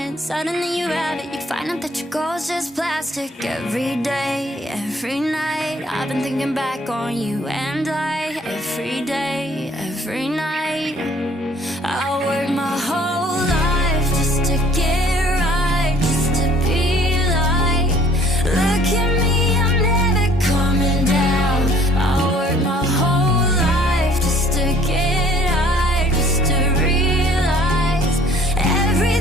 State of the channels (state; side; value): normal; both; correlation 0.57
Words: suddenly you have it. You find out that your goal's just plastic. Every day, every night, I've been thinking back on you and I. Every day, every night, I work my whole life just to get right, just to be like, look at me, I'm never coming down. I work my whole life just to get high, just to realize